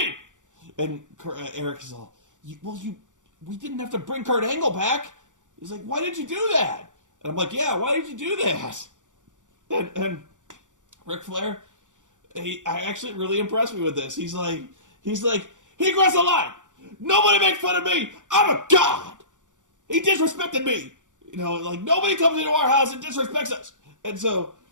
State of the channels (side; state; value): left; late; 0.86 ms